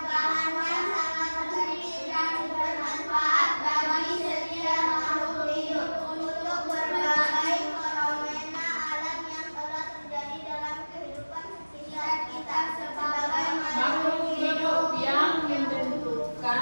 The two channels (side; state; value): both; inverted; correlation -1.00